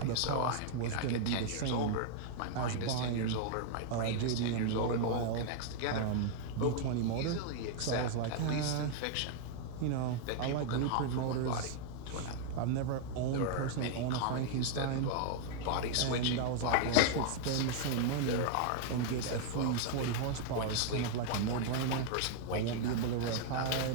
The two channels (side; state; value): both; different; correlation -0.01